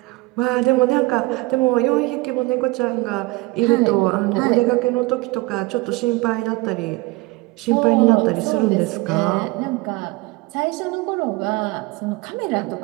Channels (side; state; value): left; quieter; 22.6 dB